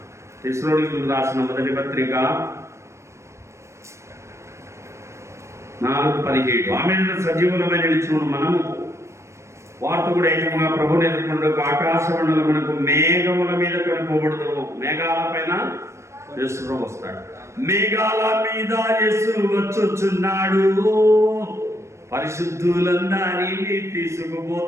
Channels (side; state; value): left; late; 0.13 ms